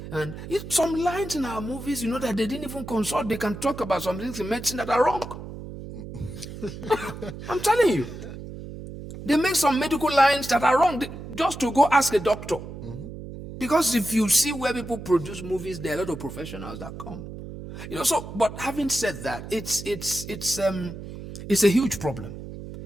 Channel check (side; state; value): right; noise; hum, 11 dB below the sound